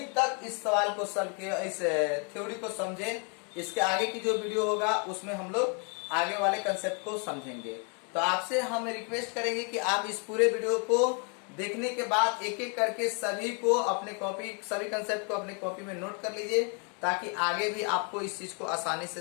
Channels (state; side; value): quieter; right; 37.7 dB